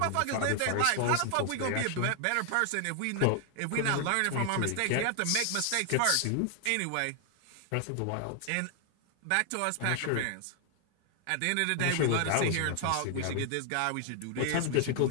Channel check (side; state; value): both; different; correlation 0.00